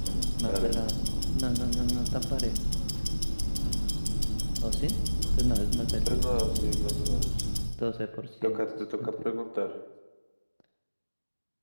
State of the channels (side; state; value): both; inverted; correlation -1.00